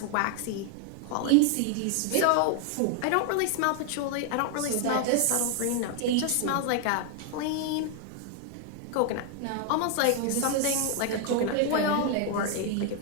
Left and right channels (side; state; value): both; different; correlation 0.00